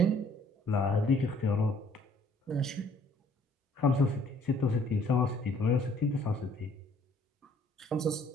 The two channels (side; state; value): both; normal; correlation 0.60